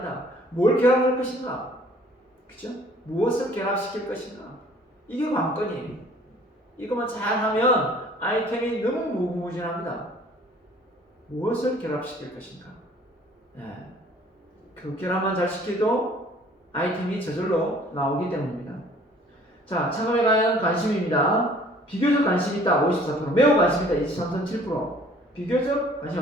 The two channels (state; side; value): normal; both; correlation 0.54